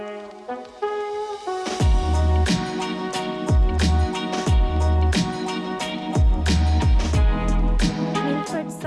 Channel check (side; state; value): both; identical; correlation 1.00